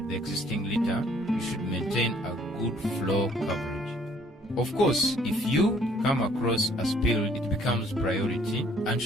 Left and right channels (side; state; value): both; normal; correlation 0.61